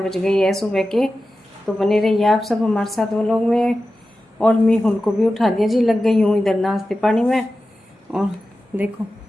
गई है सुबह के। तो बने रहिए आप सब हमारे साथ ब्लॉग में। और मीहुल को भी उठा दिया जी, लग गई हूँ इधर नाश्ते पानी में। और देखो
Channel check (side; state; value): both; normal; correlation 0.93